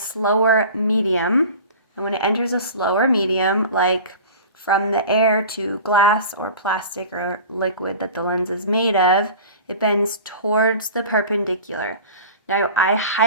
medium, and when it enters a slower medium, like from the air to glass or plastic or liquid that the lens is made of, it bends towards the perpendicular. Now, I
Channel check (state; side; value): inverted; both; correlation -0.38